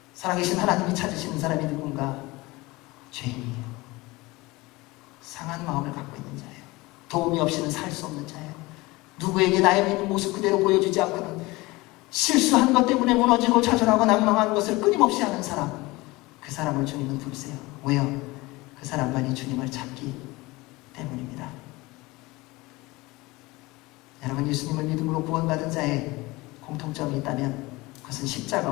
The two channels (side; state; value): right; quieter; 21.8 dB